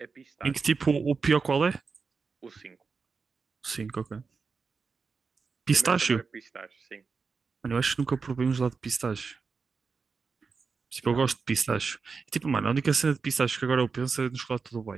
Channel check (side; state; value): left; quieter; 4.9 dB